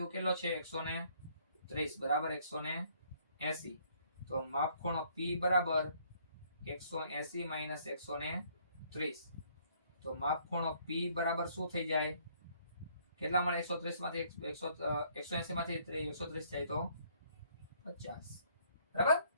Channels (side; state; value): both; inverted; correlation -0.64